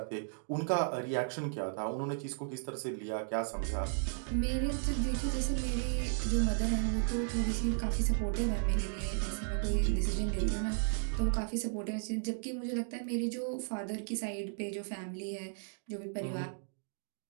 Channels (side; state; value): left; silent; digital silence